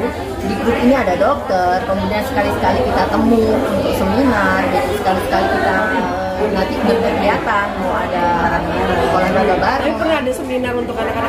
di grup ini ada dokter. Kemudian sekali-sekali kita temu untuk seminar, jadi sekali-sekali kita nanti berkegiatan, mau ada olahraga bareng. Pernah ada seminar untuk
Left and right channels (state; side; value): identical; both; correlation 1.00